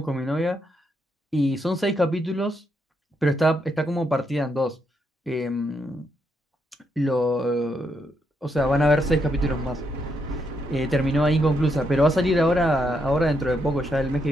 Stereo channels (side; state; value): both; normal; correlation 0.78